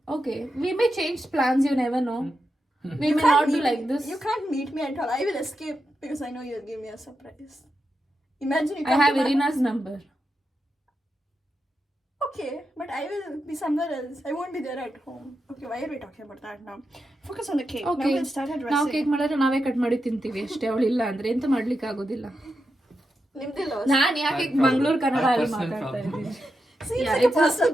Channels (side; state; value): both; normal; correlation 0.87